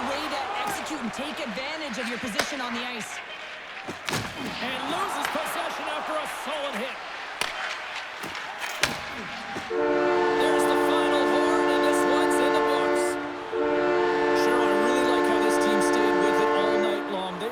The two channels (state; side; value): identical; both; correlation 1.00